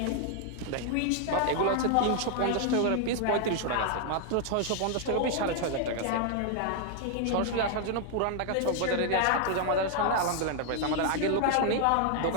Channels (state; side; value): different; both; correlation 0.00